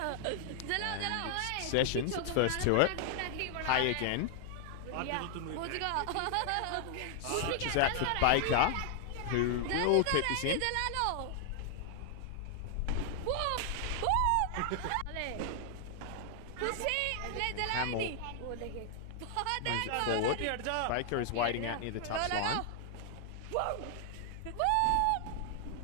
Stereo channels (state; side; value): different; both; correlation 0.00